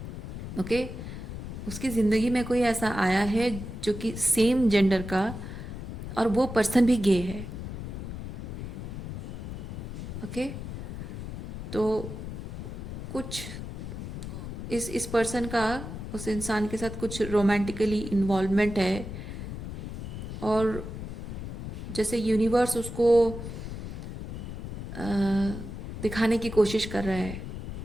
ओके, उसकी ज़िंदगी में कोई ऐसा आया है जो कि सेम जेंडर का, और वो पर्सन भी गे है, ओके। तो कुछ इस पर्सन का उस इंसान के साथ कुछ रोमांटिकली इन्वॉल्वमेंट है, और जैसे यूनिवर्स उसको अ, दिखाने की कोशिश कर रहा है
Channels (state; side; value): noise; left; rumble, 7 dB below the sound